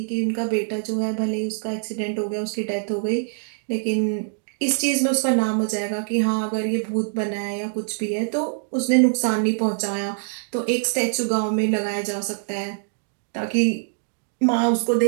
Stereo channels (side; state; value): left; silent; digital silence